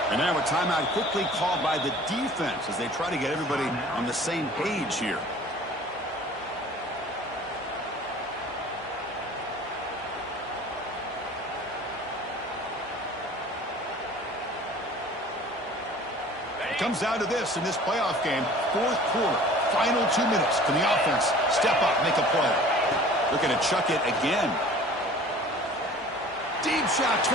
And now a timeout quickly called by the defense as they try to get everybody on the same page here. It comes down to this in this playoff game. Fourth quarter, final 2 minutes. Can the offense step up, make a play? Looking to chuck it again. Deep shot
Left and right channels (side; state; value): both; normal; correlation 0.46